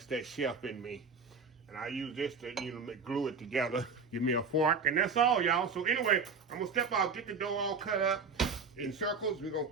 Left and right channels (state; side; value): quieter; left; 4.8 dB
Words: that chef in me. And I use this to, glue it together. Give me a fork, and that's all, y'all. So anyway, I'm gonna step out, get the dough all cut up in circles. We're gonna